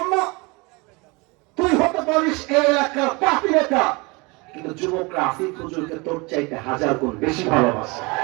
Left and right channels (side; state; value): left; quieter; 26.8 dB